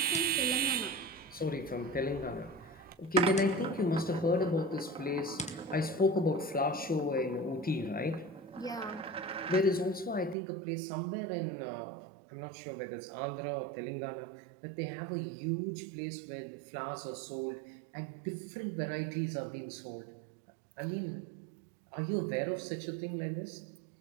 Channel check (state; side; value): drops out; left; at 10.4 s